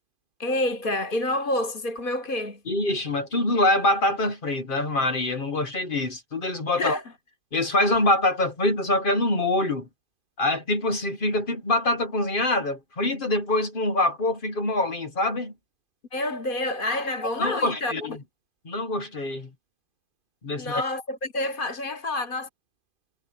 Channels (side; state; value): right; late; 2.5 ms